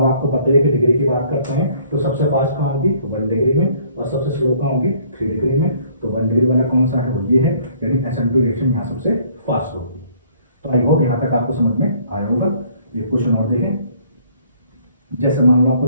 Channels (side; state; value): both; inverted; correlation -0.59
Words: आपको पता है कि डिग्री की बात करते हैं तो सबसे फास्ट कहाँ होगी 1 डिग्री में, और सबसे स्लो कहाँ होगी 3 डिग्री में। तो 1 डिग्री वाला कौन सा है, वो ये है, यानी SN2 रिएक्शन यहाँ सबसे फास्ट होगी। तो आई होप यहाँ तक आपको समझ में आया होगा। ये क्वेश्चन और देखें, जैसे मान लो आपको